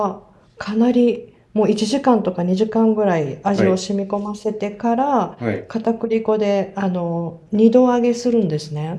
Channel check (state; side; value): identical; both; correlation 1.00